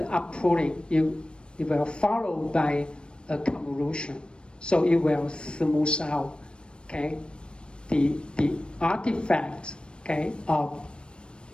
outputting, you will follow by a convolution, so it will smooth out, okay, the artifacts, okay, of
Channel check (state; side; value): late; right; 0.055 ms